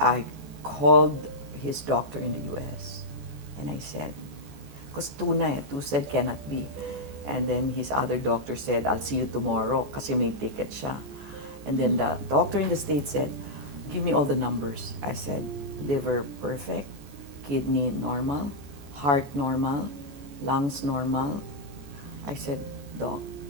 called his doctor in the US and I said, because two said cannot be. And then his other doctor said, I'll see you tomorrow kasi may ticket siya. And then the doctor in the States said, give me all the numbers. I said, liver perfect, kidney normal, heart normal, lungs normal. I said, Doc,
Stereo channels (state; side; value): late; left; 14 ms